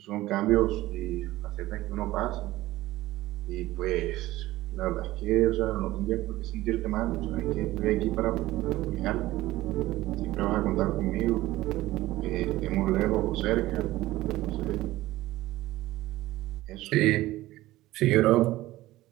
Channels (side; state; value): left; quieter; 17.0 dB